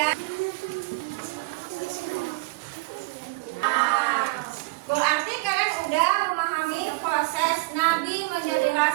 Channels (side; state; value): left; quieter; 25.1 dB